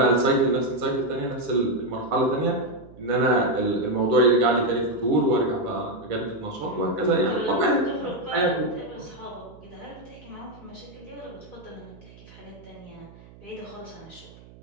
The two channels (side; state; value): right; noise; hum, 21 dB below the sound